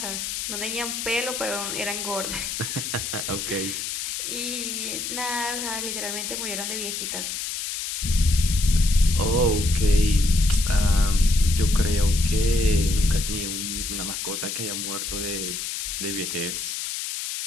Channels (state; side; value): noise; left; hiss, 4 dB below the sound